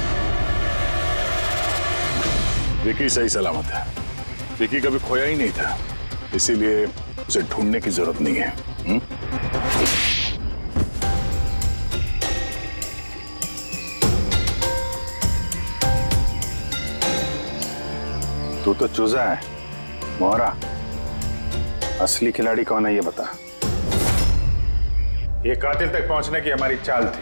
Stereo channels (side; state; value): both; inverted; correlation -1.00